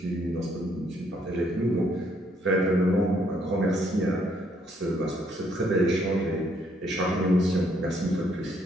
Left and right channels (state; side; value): normal; both; correlation 0.69